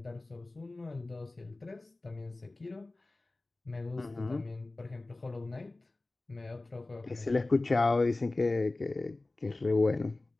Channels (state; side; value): quieter; right; 3.0 dB